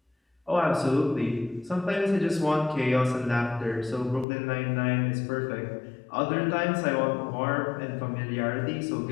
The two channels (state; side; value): drops out; right; at 4.2 s